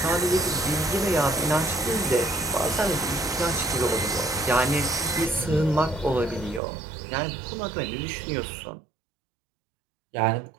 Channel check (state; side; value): drops out; left; at 6.6 s